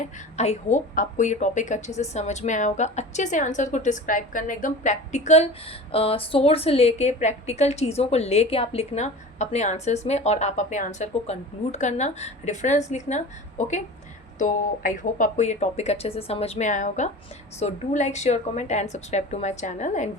आई होप आपको ये टॉपिक अच्छे से समझ में आया होगा। अच्छे से आंसर को डिस्क्राइब करना, एकदम प्रैक्टिकल सोर्स लेके, प्रैक्टिकल चीज़ों को लेके आप लिखना अपने आंसर्स में, और आप अपने आंसर को कंक्लूड करना, रेफरेंस लिखना। ओके, तो आई होप आपको ये टॉपिक अच्छे से समझ में आया होगा। So do like, share, comment and subscribe to my channel and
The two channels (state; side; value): normal; both; correlation 0.36